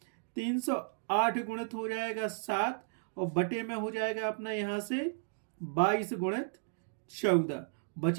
308 गुणित हो जाएगा 7 और बटे में हो जाएगा अपना यहाँ से 22 गुणित 14।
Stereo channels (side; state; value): left; silent; digital silence